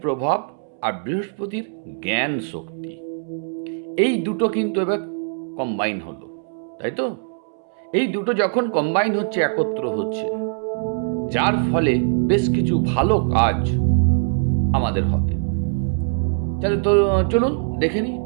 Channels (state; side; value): silent; left; 64 dB below the other